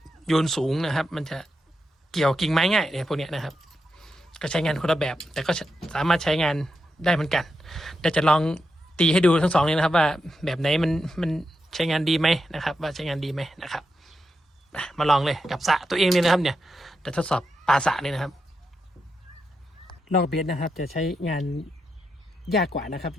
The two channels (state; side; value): normal; both; correlation 0.86